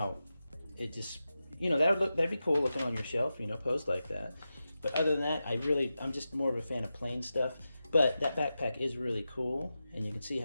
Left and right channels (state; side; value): inverted; both; correlation -0.92